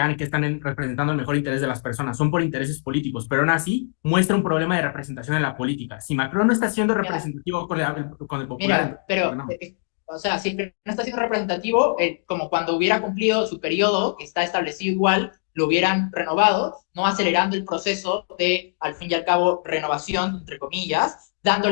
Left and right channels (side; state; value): right; silent; digital silence